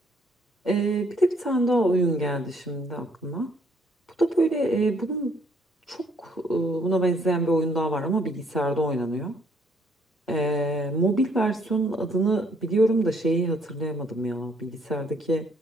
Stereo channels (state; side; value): normal; both; correlation 0.66